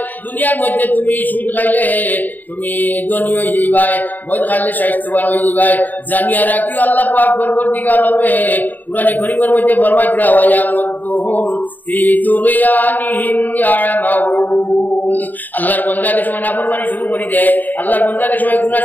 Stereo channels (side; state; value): right; late; 0.086 ms